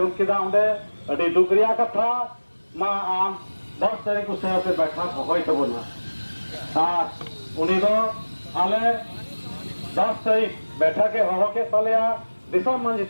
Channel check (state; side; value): inverted; both; correlation -1.00